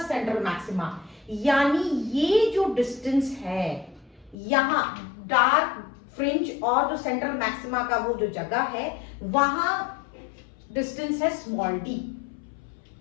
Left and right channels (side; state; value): right; drops out; at 4.4 s